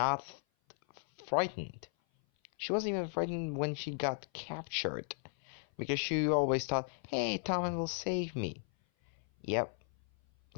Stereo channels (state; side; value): silent; right; 54 dB below the other